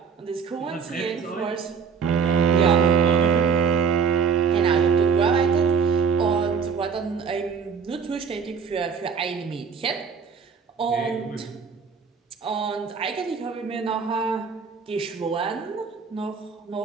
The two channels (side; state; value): left; quieter; 6.1 dB